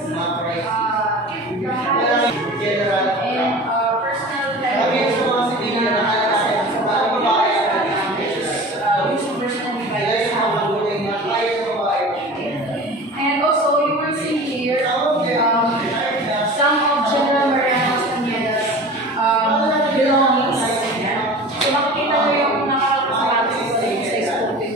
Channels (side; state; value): both; normal; correlation 0.37